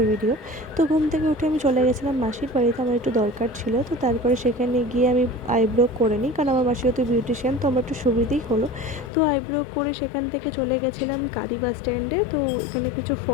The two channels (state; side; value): drops out; right; at 9.1 s